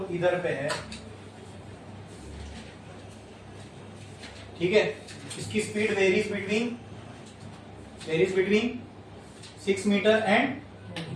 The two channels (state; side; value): identical; both; correlation 1.00